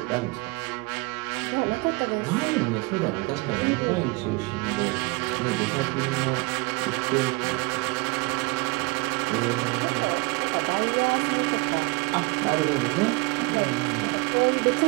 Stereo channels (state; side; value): quieter; left; 26.2 dB